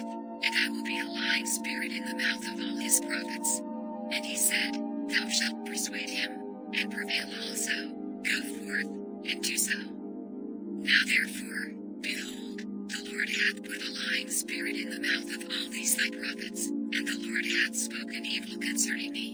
and I will be a lying spirit in the mouth of all his prophets. And he said, Thou shalt persuade him, and prevail also. Go forth, and do so. Now therefore, behold, the Lord hath put a lying spirit in the mouth of all these thy prophets, and the Lord hath spoken evil concerning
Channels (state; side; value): identical; both; correlation 1.00